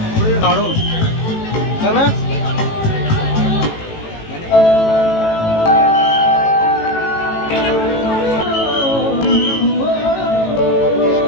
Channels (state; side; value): late; right; 18 ms